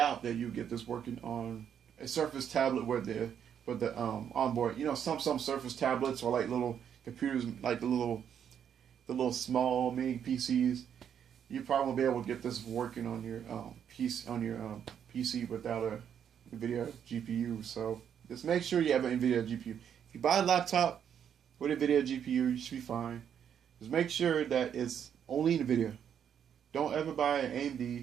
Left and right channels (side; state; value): left; quieter; 8.6 dB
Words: that you get this working on a Surface tablet with the onboard. Some Surface tablets are like little computers, like the little small mini PCs. You probably won't be able to get this working on your PC without a NVIDIA GPU. So just make sure you have an NVIDIA GPU. If you buy a laptop with a NVIDIA GPU, you should be fine. Just make sure that it's only NVIDIA. Don't ever buy an